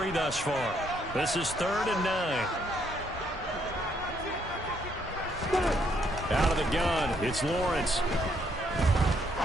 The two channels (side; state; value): both; normal; correlation 0.71